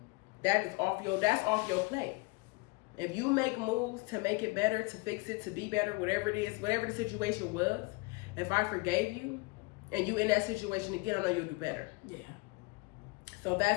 That's off your plate. If you make moves to make it better, to fix it, to be better, whatever it is, whatever the situation was, if I forgave you and you in that situation again, I know you'll do better. Yeah. So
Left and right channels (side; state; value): right; quieter; 25.9 dB